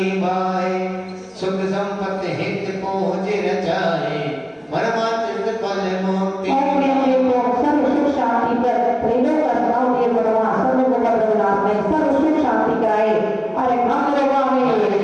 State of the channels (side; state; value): both; identical; correlation 1.00